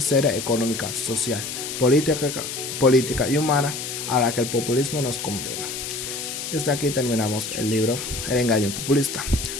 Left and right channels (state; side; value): noise; left; hiss, 6 dB below the sound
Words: económica, social, política y humana a la que el populismo nos condena. Desde aquí terminamos el libro El engaño populista.